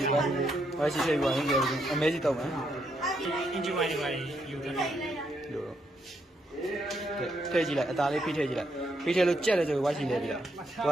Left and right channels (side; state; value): both; normal; correlation 0.77